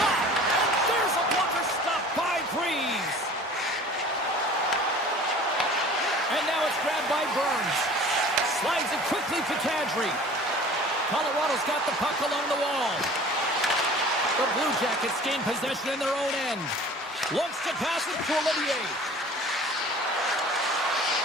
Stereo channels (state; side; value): normal; both; correlation 0.45